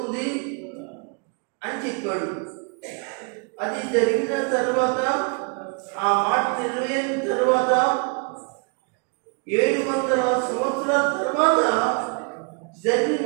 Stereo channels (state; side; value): quieter; left; 36.3 dB